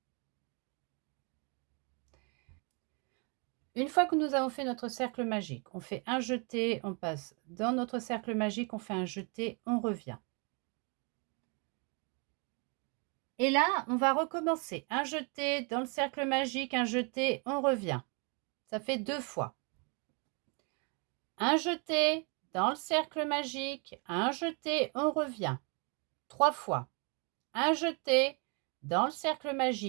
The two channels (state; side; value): quieter; left; 34.3 dB